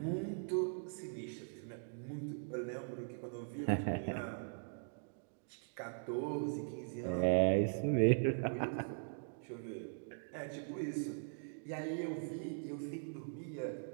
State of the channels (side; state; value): left; silent; digital silence